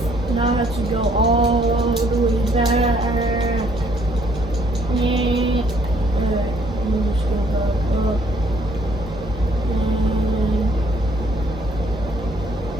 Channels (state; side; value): normal; both; correlation 0.65